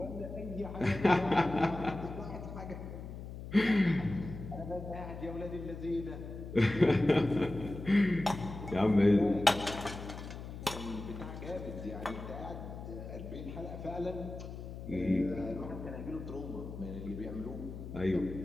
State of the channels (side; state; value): left; noise; hum, 10 dB below the sound